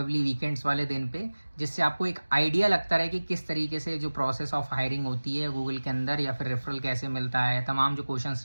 वीकेंड्स वाले दिन पे, जिससे आपको एक आइडिया लगता रहे कि किस तरीके से जो प्रोसेस ऑफ हायरिंग होती है गूगल के अंदर, या फिर रेफरल कैसे मिलता है, तमाम जो क्वेश्चंस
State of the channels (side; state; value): both; inverted; correlation -1.00